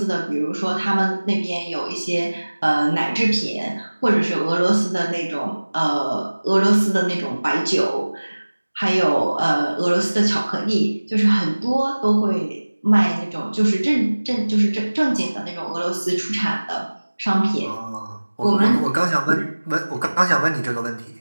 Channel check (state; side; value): inverted; both; correlation -1.00